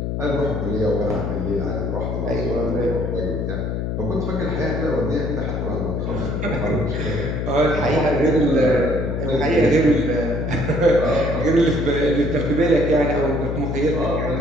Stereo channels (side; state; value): left; noise; hum, 2 dB below the sound